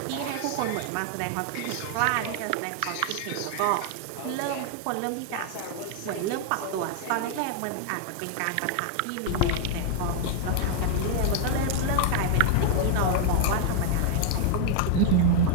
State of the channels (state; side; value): different; both; correlation 0.00